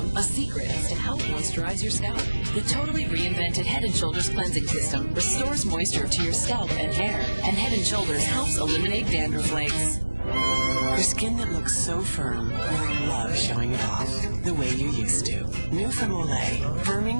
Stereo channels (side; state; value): both; inverted; correlation -1.00